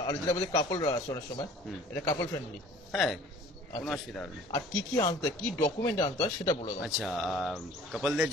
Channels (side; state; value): both; normal; correlation 0.50